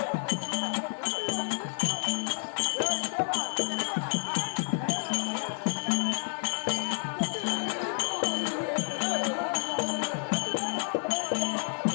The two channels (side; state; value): right; silent; 58 dB below the other